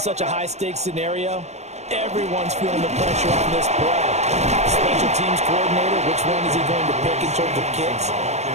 a high-stakes scenario, everyone's feeling the pressure on this play. Special teams coordinator, which one is he going to pick in terms of kicks?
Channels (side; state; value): left; late; 0.32 ms